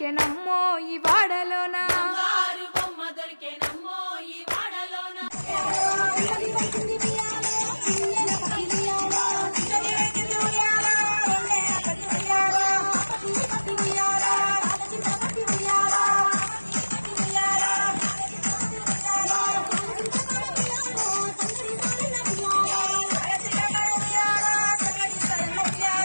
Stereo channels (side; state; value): both; inverted; correlation -1.00